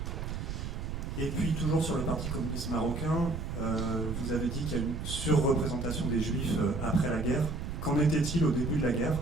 Et puis toujours sur le parti communiste marocain, vous avez dit qu'il y a une surreprésentation des juifs après la guerre. Qu'en était-il au début de la guerre?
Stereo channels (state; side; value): noise; right; rumble, 4 dB below the sound